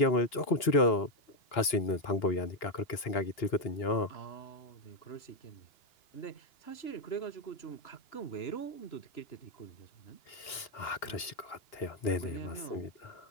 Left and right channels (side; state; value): right; late; 2.9 ms